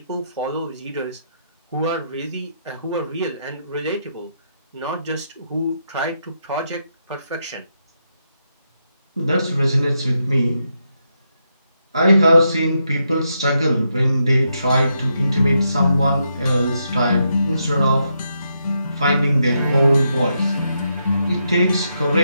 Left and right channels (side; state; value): both; inverted; correlation -0.81